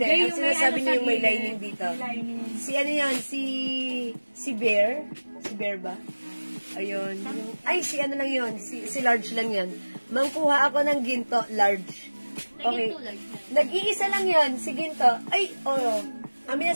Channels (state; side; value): inverted; both; correlation -1.00